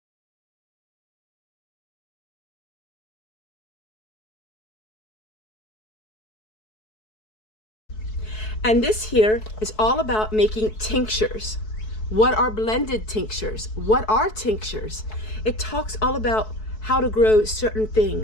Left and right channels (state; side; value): late; right; 4.6 ms